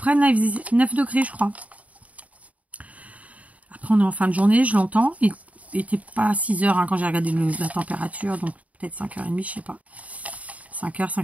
là il faisait 9 degrés je crois. Après on est en fin de journée, je l'entends. Il n'était pas à 6 heures hein, quand j'ai regardé la température, donc peut-être 5h30, je sais pas. 5h,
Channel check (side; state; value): left; late; 0.069 ms